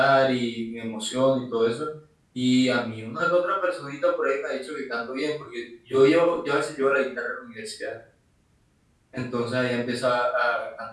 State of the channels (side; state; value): both; identical; correlation 1.00